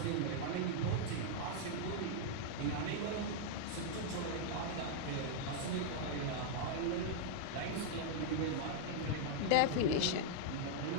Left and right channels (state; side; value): different; both; correlation -0.01